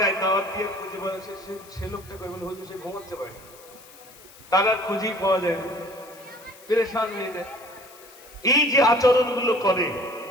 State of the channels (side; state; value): left; noise; hiss, 22 dB below the sound